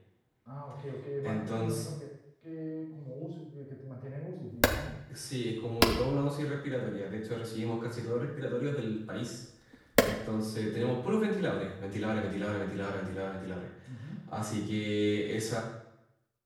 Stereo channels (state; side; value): identical; both; correlation 1.00